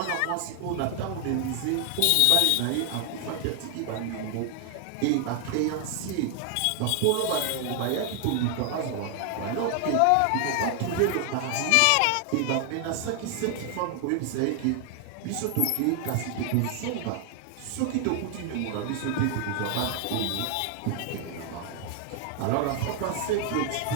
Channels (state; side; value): different; both; correlation 0.00